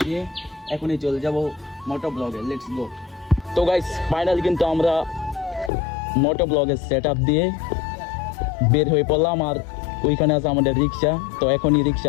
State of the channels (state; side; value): drops out; right; at 5.7 s